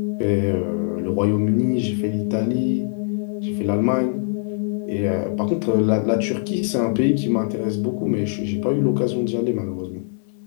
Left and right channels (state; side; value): silent; right; digital silence